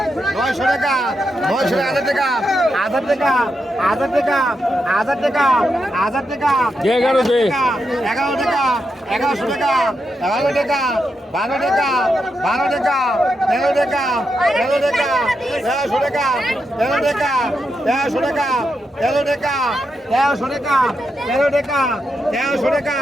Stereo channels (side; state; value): both; normal; correlation 0.85